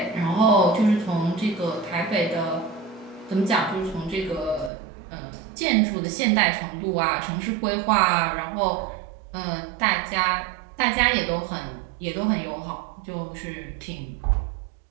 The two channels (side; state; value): left; drops out; at 4.7 s